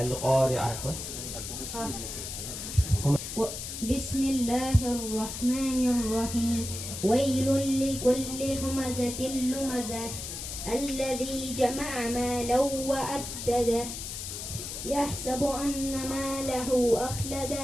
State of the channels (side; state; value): left; noise; hiss, 7 dB below the sound